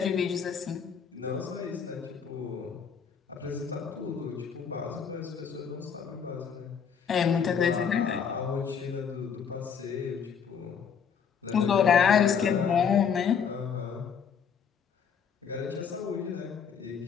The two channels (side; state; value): right; quieter; 7.0 dB